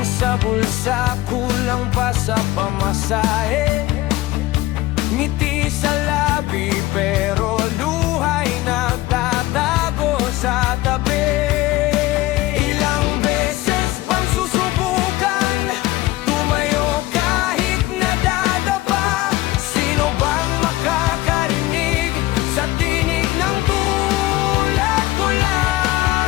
sa bulsa, kulang pa sa pamasahe. Ngiti sa labi pero luha'y nagtatago sa tabi. Ilang beses bang susubukan tumayo kahit nadadapa? Sino bang makakarinig sa tinig ng tulad ko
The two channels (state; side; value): quieter; right; 17.8 dB